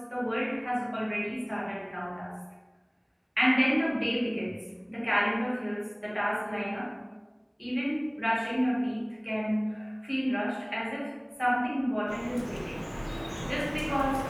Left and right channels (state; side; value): identical; both; correlation 1.00